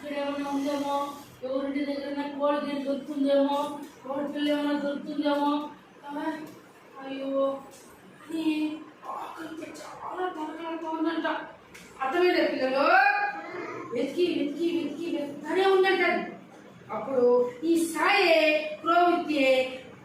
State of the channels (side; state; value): both; identical; correlation 1.00